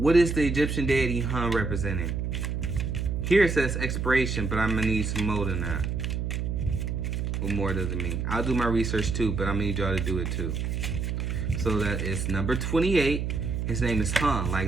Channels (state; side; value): noise; right; hum, 1 dB below the sound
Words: is the Egyptian deity Hun representing? Here it says expiration, but I'm gonna need some more than that. What more does it mean? I'll do my research too, but I'm gonna need y'all to do it too. So that is number 28. His name is Hun, like